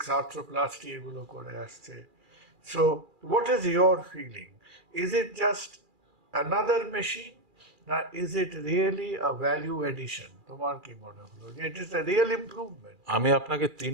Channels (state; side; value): late; left; 2.4 ms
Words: আর্থ্রোপ্লাস্টি এগুলো করে আসছে। So what is your feeling? Is it just another machine, না is it really a value addition? তোমার কি মনে হলো যে it is a real improvement? আমি আপনাকে